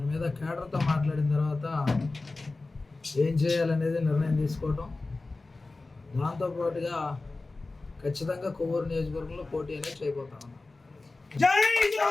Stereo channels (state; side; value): quieter; right; 3.4 dB